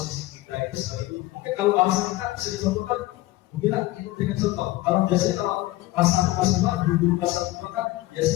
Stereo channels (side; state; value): right; quieter; 18.1 dB